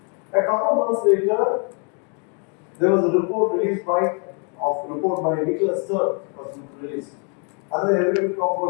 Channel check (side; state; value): right; quieter; 37.2 dB